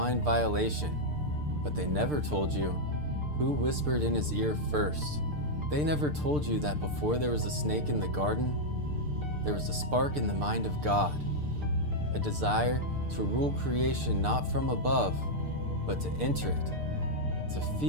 violation, but they never told you who whispered in his ear first. They never told you that before there was a snake in the garden, there was a spark in the mind of God, a desire to rule creation not from above, but to enter it, to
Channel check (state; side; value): late; left; 6.7 ms